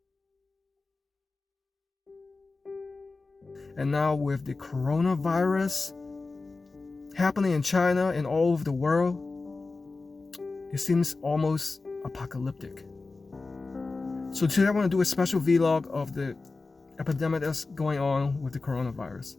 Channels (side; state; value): right; quieter; 3.7 dB